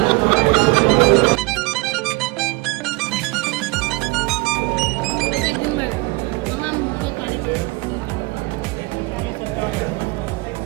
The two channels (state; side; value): quieter; left; 25.0 dB